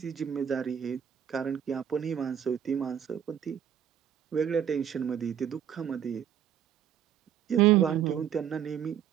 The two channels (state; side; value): quieter; left; 9.2 dB